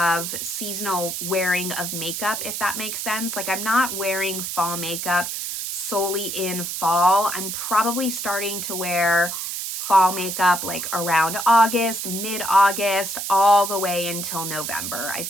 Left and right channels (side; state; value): right; noise; hiss, 4 dB below the sound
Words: seasonal wearing of makeup, if that makes sense. Like I'm not wearing fall makeup solely in fall. I'm probably starting to wear fall makeup like around August, mid-August, all the way until November. I